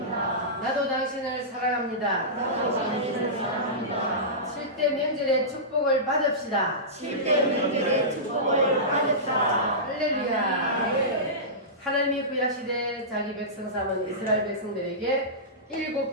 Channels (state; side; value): normal; both; correlation -0.17